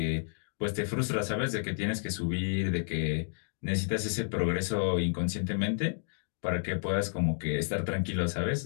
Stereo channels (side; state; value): right; silent; digital silence